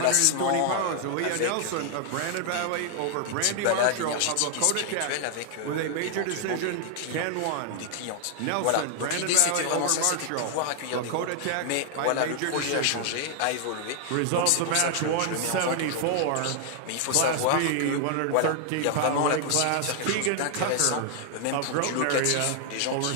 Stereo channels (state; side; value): different; both; correlation 0.00